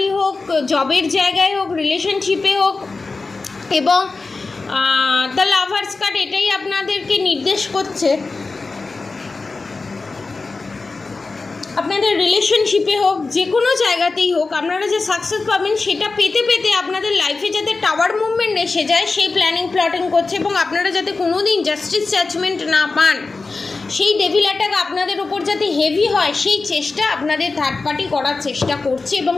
হোক, জবের জায়গায় হোক, রিলেশনশিপে হোক। এবং দ্য লাভার্স কার্ড এটাই আপনাদেরকে নির্দেশ করছে, আপনাদের রিলেশনশিপে হোক, যে কোনো জায়গাতেই হোক, আপনারা যে সাকসেস পাবেন সেটা পেতে পেতে আপনাদের লাইফে যাতে টাওয়ার মুভমেন্ট এসে যায়, সেই প্ল্যাটিং করছে। এবং আপনারা যাতে কোনো দিন জাস্টিস জাজমেন্ট না পান, সেই ডেভিল অ্যাটাক আপনাদের ওপর যাতে হেভি হয়, সেই চেষ্টা আপনাদের থার্ড পার্টি করার চেষ্টা করছে এবং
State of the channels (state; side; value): quieter; right; 3.9 dB